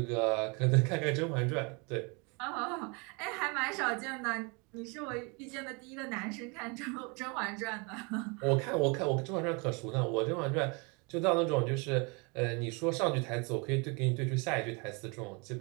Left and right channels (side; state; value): left; quieter; 31.1 dB